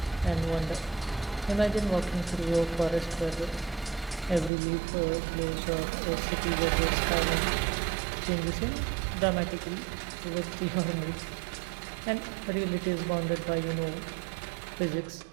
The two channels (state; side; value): drops out; left; at 4.5 s